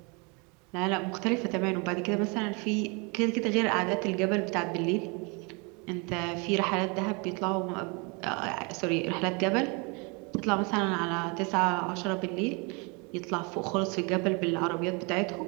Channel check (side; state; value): left; quieter; 30.9 dB